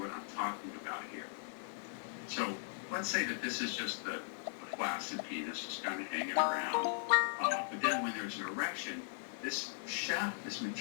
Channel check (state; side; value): silent; right; 52 dB below the other